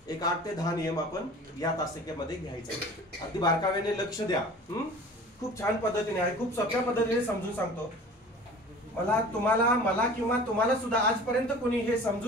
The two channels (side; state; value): both; normal; correlation 0.42